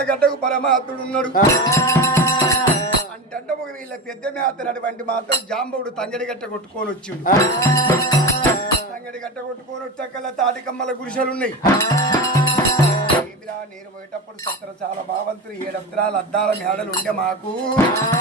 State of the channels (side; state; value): both; normal; correlation 0.23